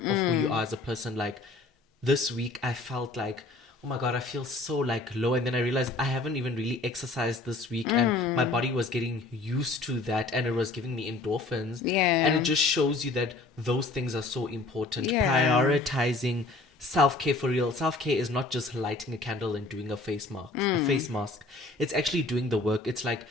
of who you are as a person. Like this week, I felt like, oh my god, I feel so like low, and then I realized I haven't even really exercised this week, and my body was getting used to that, and it was giving me endorphins. And Yeah. it just shows you that those things are so important. Yeah. Prioritizing self-care for real. Self-care is not just lighting a candle and doing a face mask. It's actually doing the work. It's like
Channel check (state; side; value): quieter; right; 3.2 dB